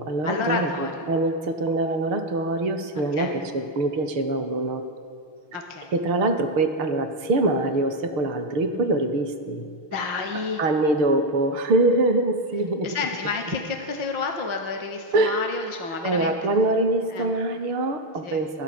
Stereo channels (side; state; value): left; late; 6.3 ms